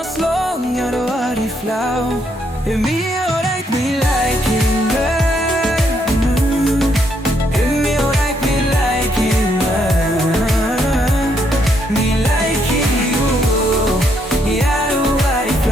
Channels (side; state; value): both; normal; correlation 0.74